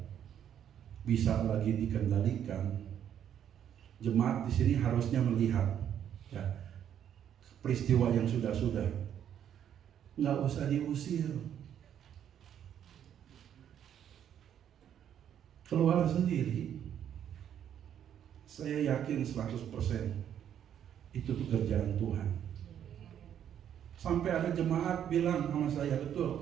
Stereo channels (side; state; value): left; quieter; 9.6 dB